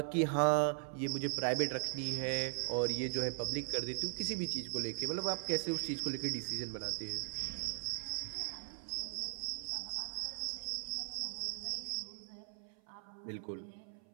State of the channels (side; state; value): left; silent; 52 dB below the other